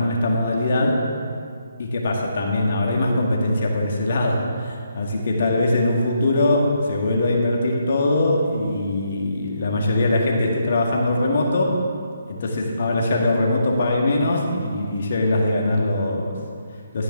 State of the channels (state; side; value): inverted; both; correlation -0.78